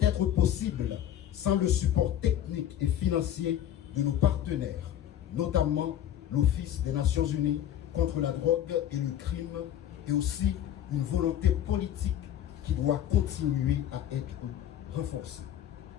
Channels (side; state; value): right; quieter; 10.9 dB